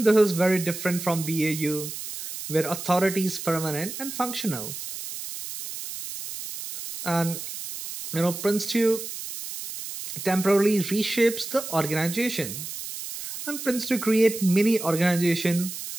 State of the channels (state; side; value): noise; right; hiss, 8 dB below the sound